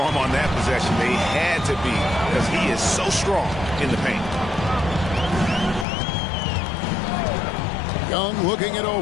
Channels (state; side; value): drops out; right; at 5.9 s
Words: on that possession. They had to be because he is so strong in the paint. Young looking it